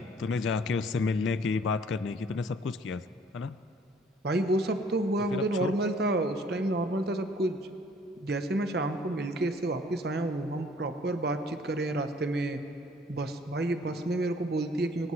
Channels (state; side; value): normal; both; correlation 0.58